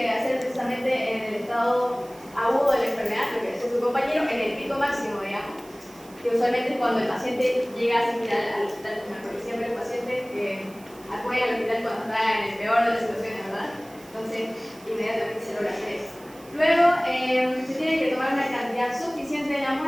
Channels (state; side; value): noise; right; hiss, 24 dB below the sound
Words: hacer precisamente en el estado agudo de la enfermedad, lo que decía su compañero, en el pico máximo, digamos, que usualmente es cuando el paciente llega a asistir al hospital, porque siempre el paciente acude al hospital cuando está en el peor de las situaciones, ¿verdad? Entonces, inmediatamente se logra hacer eso. Luego, se tiene que tomar una cantidad suficiente de la